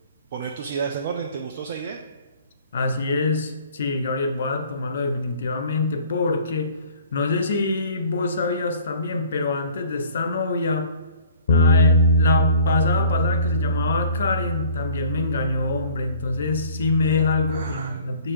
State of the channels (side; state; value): both; inverted; correlation -0.51